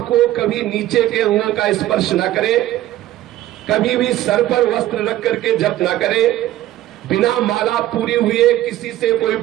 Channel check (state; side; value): quieter; left; 14.3 dB